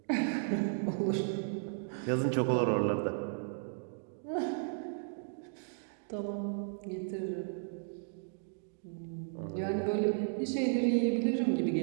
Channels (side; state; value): left; silent; digital silence